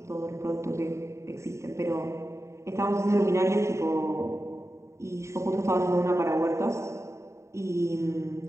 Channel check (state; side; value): late; left; 0.14 ms